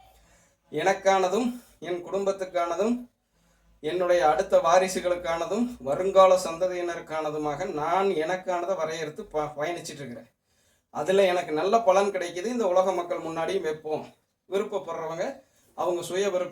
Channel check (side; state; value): both; identical; correlation 1.00